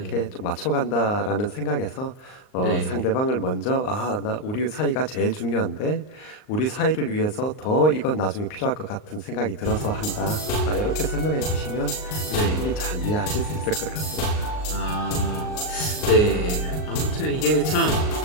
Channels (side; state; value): right; late; 38 ms